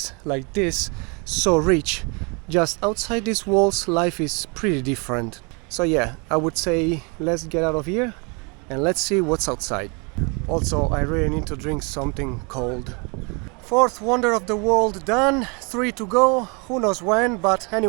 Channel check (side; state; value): left; quieter; 32.3 dB